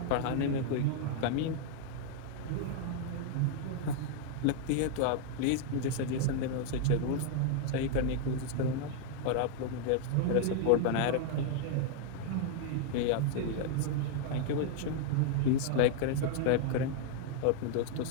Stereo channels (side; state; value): both; different; correlation 0.00